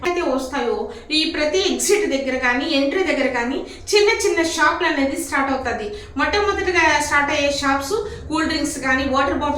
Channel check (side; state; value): both; identical; correlation 1.00